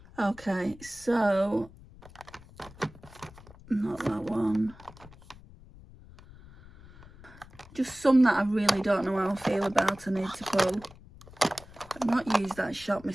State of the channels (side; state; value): left; noise; rumble, 21 dB below the sound